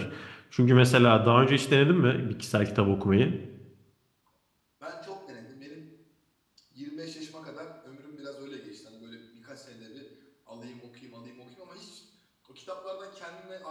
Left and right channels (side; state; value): both; identical; correlation 1.00